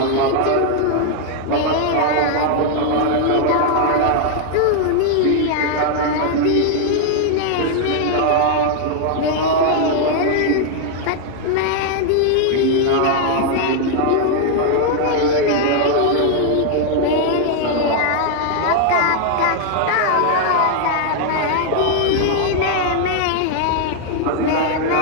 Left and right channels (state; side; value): different; both; correlation 0.00